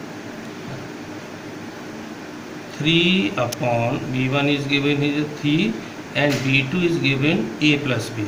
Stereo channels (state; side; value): identical; both; correlation 1.00